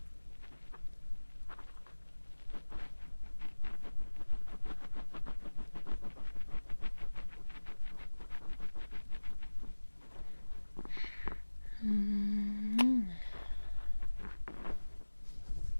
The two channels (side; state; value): both; inverted; correlation -1.00